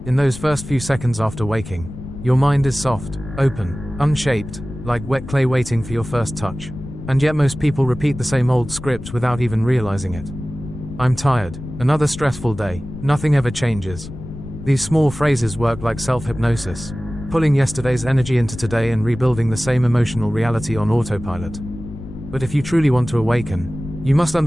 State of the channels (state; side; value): noise; left; rumble, 12 dB below the sound